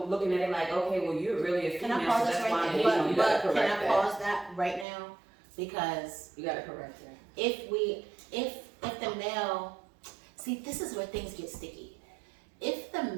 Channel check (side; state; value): left; drops out; at 4.9 s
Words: looking at it like, okay, well, you're really a Can female, I so pause that's this why right I'm there? you you. gotta But can correct I that. pause that right now? Because You gotta correct that. if the male, see, this is where things get sticky. If the